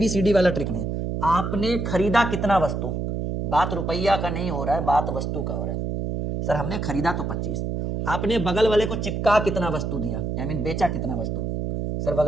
वाला ट्रिक नहीं। आपने खरीदा कितना वस्तु, बात रुपया का नहीं हो रहा है, बात वस्तु का हो रहा है। सर हमने खरीदा तो 25, आपने बगल वाले को चिपका कितना वस्तु दिया, आई मीन बेचा कितना वस्तु। सर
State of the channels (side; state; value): right; noise; hum, 2 dB below the sound